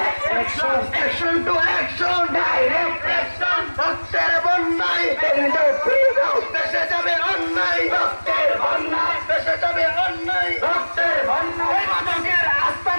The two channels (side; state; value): both; inverted; correlation -1.00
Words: action, action to action, direct